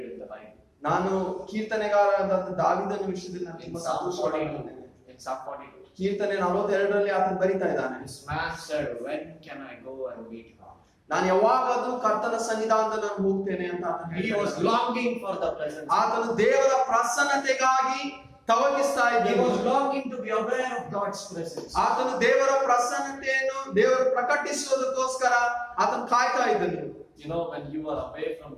in the Bible. ನಾನು ಕೀರ್ತನೆಗಾರರಾದ ದಾವೀದನ ವಿಷಯದಲ್ಲಿ ನಾನು In ತುಂಬಾ Psalm ಸಂತೋಷವಾಗಿದ್ದೇನೆ. 42. In Psalm 42. ಕೀರ್ತನೆ 42ರಲ್ಲಿ ಆತನು ಬರಿತಾ ಇದ್ದಾನೆ, This man said, when can I go and meet God? ನಾನು ಯಾವಾಗಾದ್ರೂ ಕರ್ತನ ಸನ್ನಿಧಾನದಲ್ಲಿ ನಾನು ಹೋಗ್ತೇನೆ ಅಂತ ಆತನು He ಹೇಳ್ತಾ was ಇದ್ದಾನೆ. longing for the presence. ಆತನು ದೇವರ ಪ್ರಸನ್ನತೆಗಾಗಿ ತವಕಿಸ್ತಾ He ಇದ್ದನು. was longing to be aware of God's presence. ಆತನು ದೇವರ ಪ್ರಸನ್ನತೆಯನ್ನು ದೇವರು ಪ್ರಕಟಿಸುವುದಕ್ಕೋಸ್ಕರ ಆತನು ಕಾಯ್ತಾ ಇದ್ದನು. You know, when you are away from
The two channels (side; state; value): both; identical; correlation 1.00